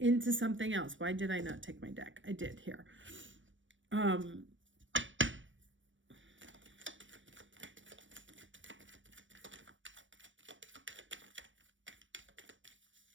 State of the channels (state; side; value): late; left; 0.56 ms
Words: something else? Why did I not take my deck? I did here.